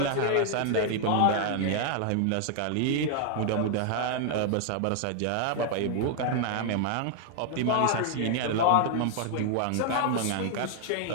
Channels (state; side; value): different; both; correlation 0.00